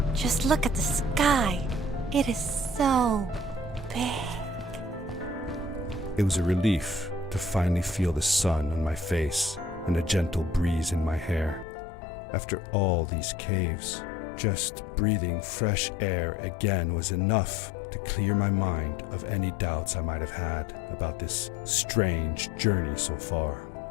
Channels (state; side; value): drops out; right; at 11.7 s